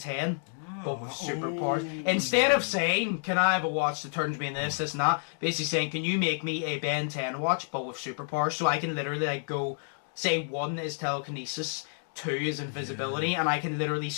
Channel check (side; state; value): right; silent; digital silence